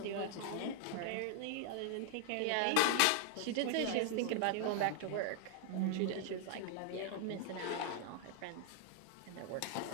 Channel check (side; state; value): both; different; correlation 0.00